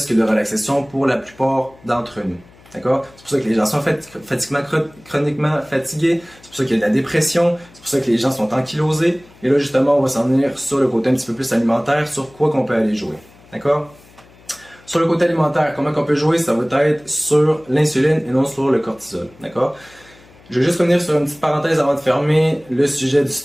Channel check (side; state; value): left; noise; hum, 26 dB below the sound